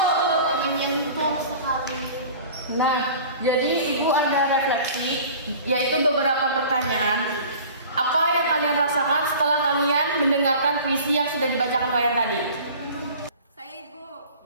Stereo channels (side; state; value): both; inverted; correlation -0.43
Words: Menyentuh sekali. Nah, jadi ibu ada refleksi, yaitu beberapa pertanyaan. Apa yang kalian rasakan setelah kalian mendengarkan puisi yang sudah dibacakan Wayan tadi? Saya ibu,